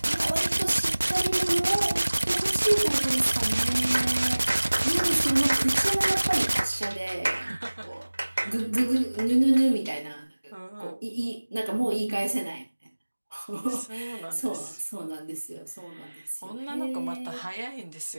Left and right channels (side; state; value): both; inverted; correlation -1.00